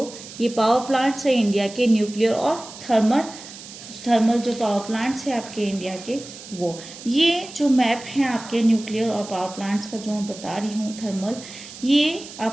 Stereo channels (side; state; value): right; noise; hiss, 15 dB below the sound